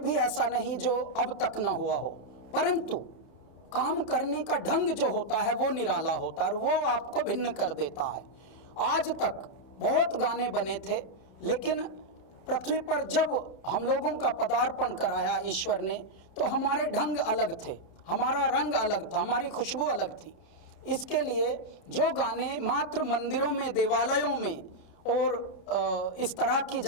ऐसा नहीं जो अब तक ना हुआ हो, परंतु काम करने का ढंग जो होता है वो निराला होता है और वो आपको भिन्न कर देता है। आज तक बहुत गाने बने थे, लेकिन पृथ्वी पर जब हम लोगों का पदार्पण कराया ईश्वर ने, तो हमारे ढंग अलग थे, हमारा रंग अलग था, हमारी खुशबू अलग थी। इसके लिए जो गाने मात्र मंदिरों में, देवालयों में और इस तरह की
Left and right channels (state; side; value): late; right; 32 ms